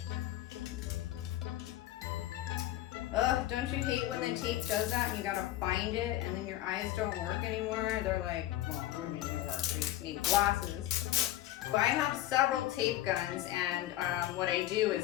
Ugh, don't you hate when the tape does that and you gotta find it and then your eyes don't work anymore? They're like, well, what do you mean they work? They just need glasses. But I have several tape guns, and what I do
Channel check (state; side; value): quieter; right; 14.3 dB